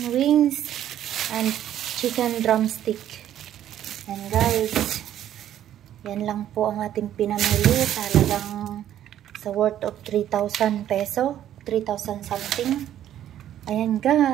wings and chicken drumstick. And guys, yan lang po ang ating pinamili. Talagang sa worth of 3,000 peso. 3,000 something. Ayan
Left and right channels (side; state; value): left; quieter; 11.4 dB